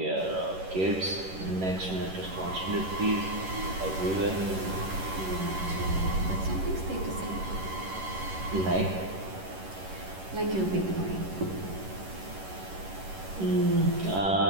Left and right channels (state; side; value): late; left; 11 ms